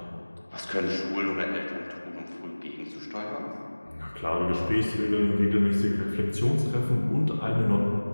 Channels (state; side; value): inverted; both; correlation -1.00